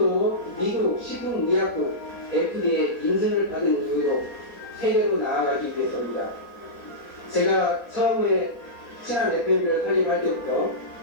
미국 식품의약국 FDA 인증을 받은 이유로 세계로 나아가기 위해서입니다. 제가 처음에 친환 FM을 설립할 때부터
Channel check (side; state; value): right; late; 4.2 ms